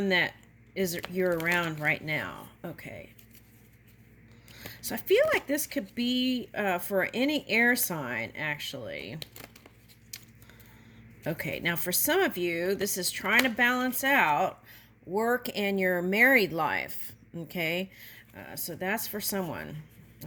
that you're around right now. Okay. So I feel like this could be for any air sign, actually. Okay, now for some of you, this is trying to balance out work and your married life. Okay, so that's for someone.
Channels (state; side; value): identical; both; correlation 1.00